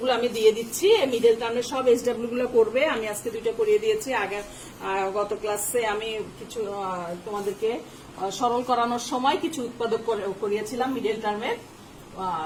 গুলো আমি দিয়ে দিচ্ছি, মিডল টার্মের সব SW গুলো করবে। আমি আজকে 2টা করিয়ে দিয়েছি। আগে গত ক্লাসে আমি কিছু তোমাদেরকে সরল করানোর সময় কিছু উৎপাদক করিয়েছিলাম মিডল টার্মের।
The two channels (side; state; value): both; identical; correlation 1.00